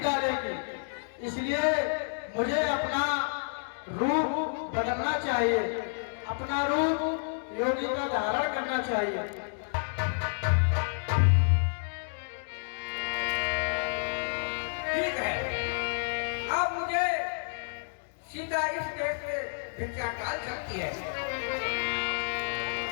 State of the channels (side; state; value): right; silent; digital silence